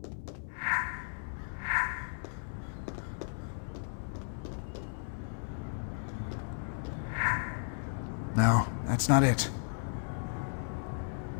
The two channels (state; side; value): silent; right; 55 dB below the other